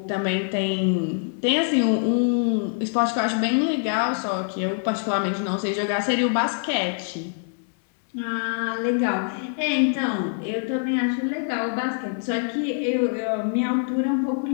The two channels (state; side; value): silent; right; 62 dB below the other